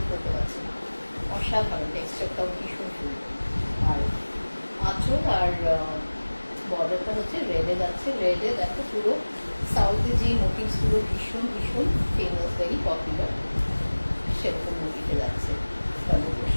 করতে পারছি না। অসাধারণ, টেক্সচারটাও ভীষণ সুন্দর। আর আঁচল আর বর্ডারটা হচ্ছে রেডে যাচ্ছে। রেডে দেখো পুরো সাউথে যে মোটিভসগুলো ভীষণ ভীষণ ফেমাস, ভেরি পপুলার, সেরকম মোটিভে যাচ্ছে।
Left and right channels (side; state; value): both; inverted; correlation -1.00